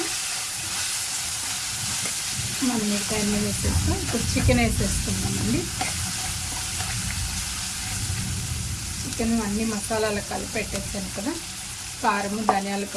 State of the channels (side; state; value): both; identical; correlation 1.00